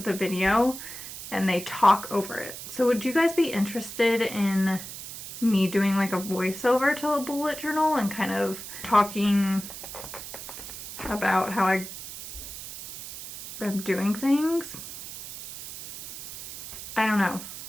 the video and they talk over it. So would you guys be interested in me doing like a voiceover to a bullet journal and kind of talking about how I am doing things? I don't know.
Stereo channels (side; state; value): right; noise; hiss, 11 dB below the sound